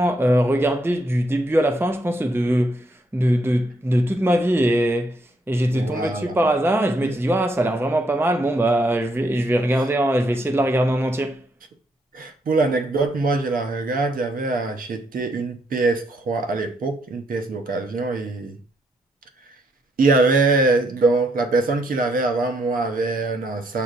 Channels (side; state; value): both; normal; correlation 0.75